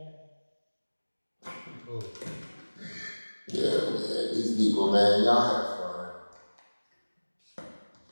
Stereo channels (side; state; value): both; inverted; correlation -1.00